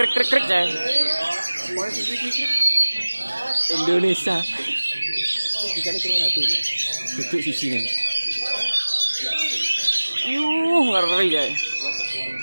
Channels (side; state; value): both; inverted; correlation -1.00